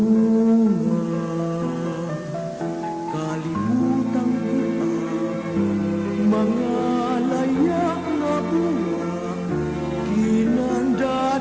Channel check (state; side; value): identical; both; correlation 1.00